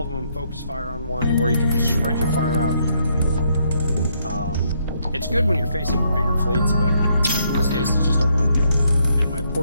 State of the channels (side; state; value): both; inverted; correlation -0.73